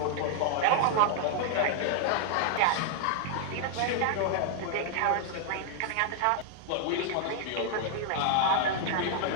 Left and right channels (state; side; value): different; both; correlation 0.00